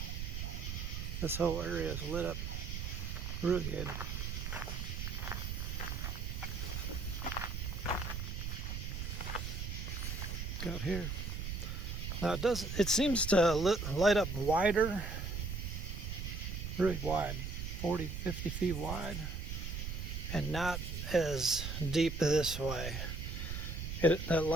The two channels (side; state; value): right; noise; rumble, 4 dB below the sound